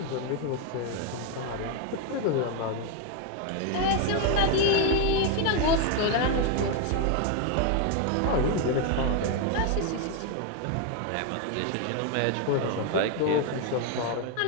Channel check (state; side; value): different; both; correlation 0.01